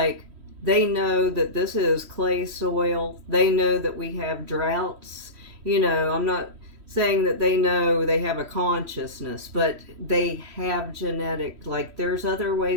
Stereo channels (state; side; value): late; left; 3.1 ms